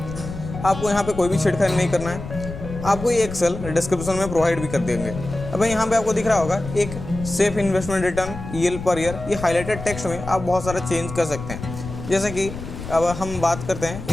आपको यहाँ पे कोई भी छेड़खानी नहीं करना है। आपको ये एक्सेल डिस्क्रिप्शन में प्रोवाइड भी कर देंगे। अब यहाँ पे आपको दिख रहा होगा एक safe investment return EL per year. ये हाईलाइटेड टेक्स्ट में आप बहुत सारा चेंज कर सकते हैं। जैसे कि अब हम बात करते हैं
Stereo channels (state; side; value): noise; left; rumble, 10 dB below the sound